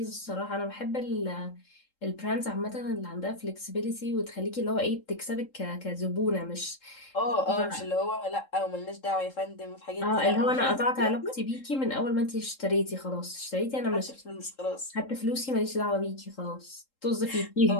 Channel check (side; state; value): right; late; 3.7 ms